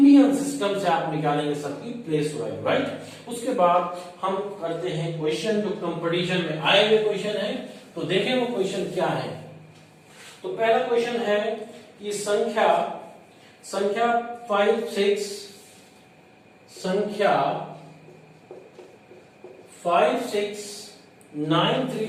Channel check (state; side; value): identical; both; correlation 1.00